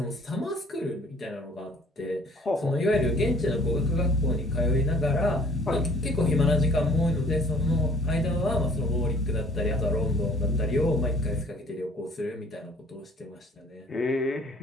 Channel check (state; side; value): normal; both; correlation 0.55